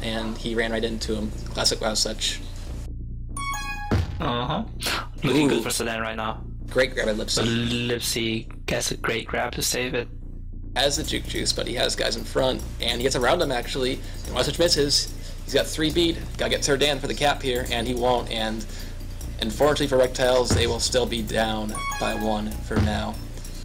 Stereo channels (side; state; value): both; identical; correlation 1.00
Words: and he ran right into him. Classic Wild Such. Looking good for Sedan right now. Great grab by Lipsy. Lipsy gets a great grab to save it. Has the juke juice, but he has guys in front, and he gets around him actually. And Wild Such misses. He's got 3 beat. Gotta get Serdan for the cap here, and he won't. And unfortunately for Rektiles, they will still be down by 1 for now.